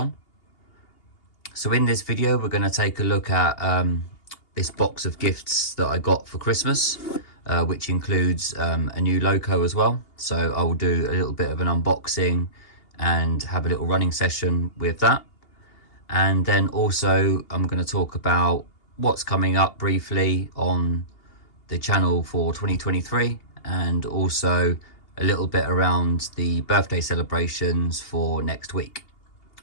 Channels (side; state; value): right; late; 2.8 ms